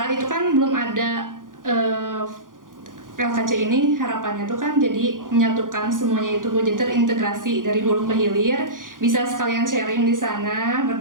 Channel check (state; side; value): late; left; 0.89 ms